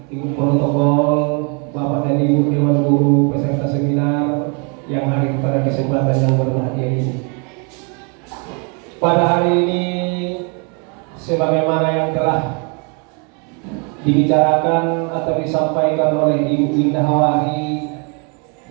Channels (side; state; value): left; quieter; 35.7 dB